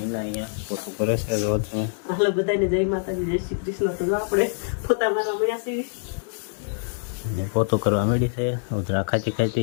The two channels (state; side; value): silent; right; digital silence